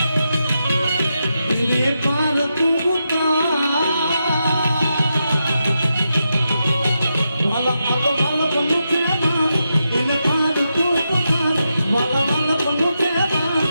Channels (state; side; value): inverted; both; correlation -0.86